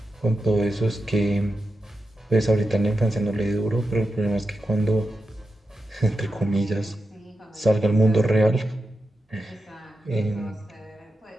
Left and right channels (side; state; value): both; normal; correlation 0.89